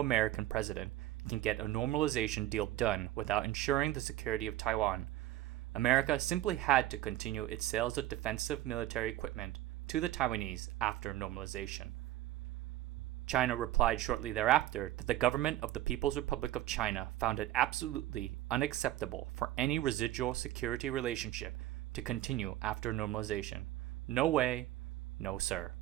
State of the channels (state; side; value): quieter; left; 14.8 dB